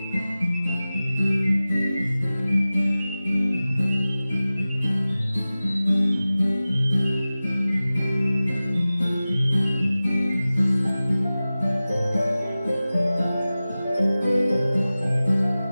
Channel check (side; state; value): both; inverted; correlation -0.97